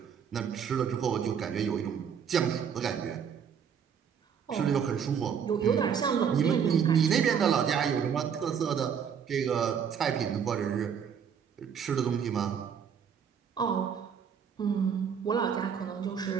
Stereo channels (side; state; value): left; quieter; 7.5 dB